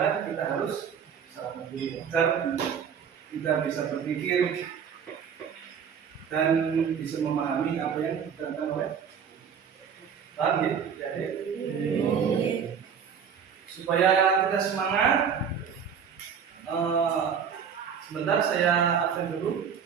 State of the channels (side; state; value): left; quieter; 7.3 dB